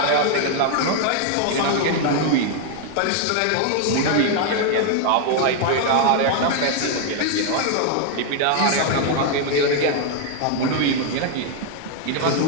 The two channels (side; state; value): both; different; correlation 0.00